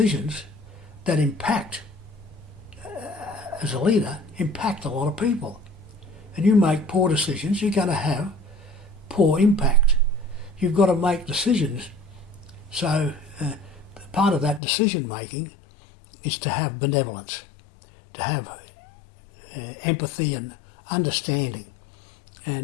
that impact, as a leader, impact a lot of people. And you make poor decisions, you're going to have poor impact. You've got to make decisions. So part of that decision making is to have benevolence, to have empathy and understanding.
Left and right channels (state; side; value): drops out; right; at 14.6 s